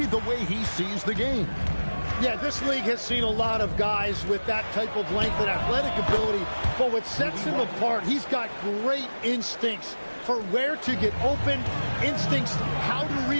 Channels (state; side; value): inverted; both; correlation -1.00